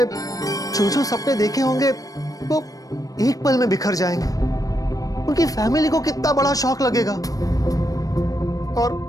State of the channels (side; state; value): right; late; 0.17 ms